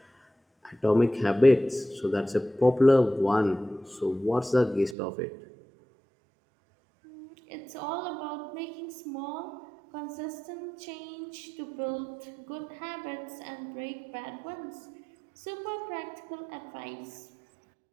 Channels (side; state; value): left; drops out; at 5.0 s